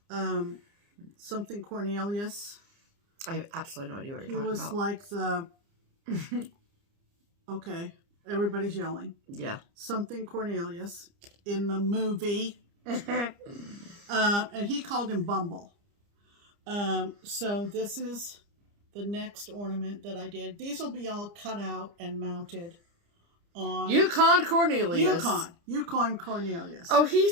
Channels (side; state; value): left; late; 29 ms